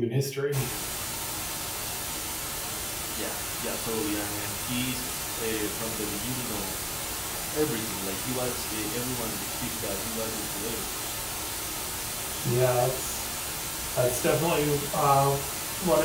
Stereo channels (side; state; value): both; identical; correlation 1.00